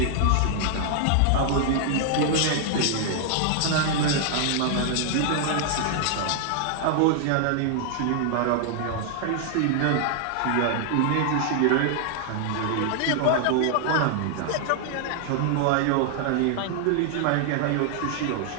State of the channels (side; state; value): both; different; correlation 0.00